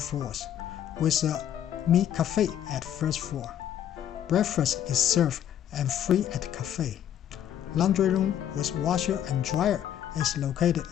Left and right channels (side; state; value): right; quieter; 10.4 dB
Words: with a Mi Café at first floor. Breakfast is served and free at the cafe. Laundry room with washer and dryer is located